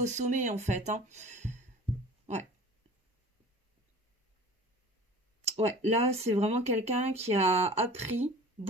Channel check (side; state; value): both; normal; correlation 0.43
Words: sommet, en fait, hein. Ouais. Ouais, là, c'est vraiment quelqu'un qui a appris